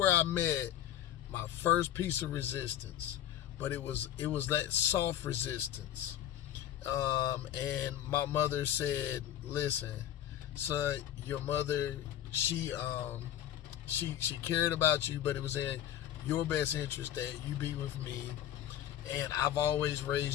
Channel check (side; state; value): right; quieter; 11.5 dB